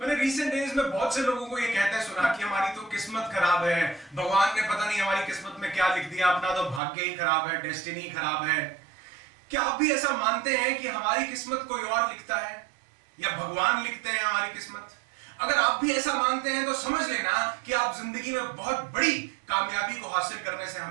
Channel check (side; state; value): left; drops out; at 6.8 s